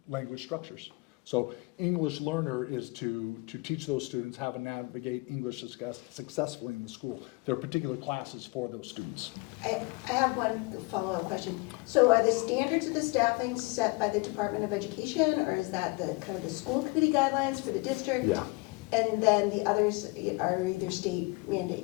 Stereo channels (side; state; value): right; quieter; 26.5 dB